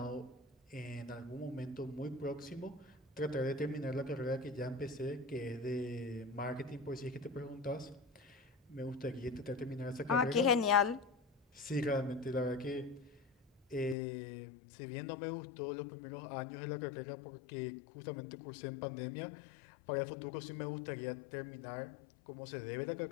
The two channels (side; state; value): right; drops out; at 14.0 s